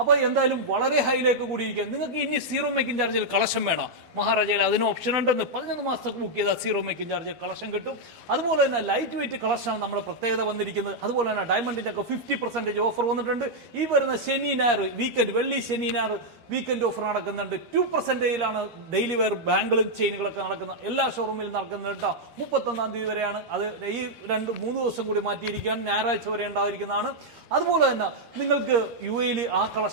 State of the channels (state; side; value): late; left; 12 ms